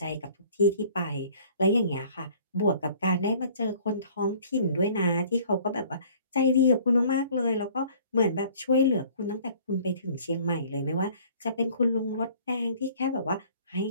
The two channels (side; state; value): both; inverted; correlation -0.53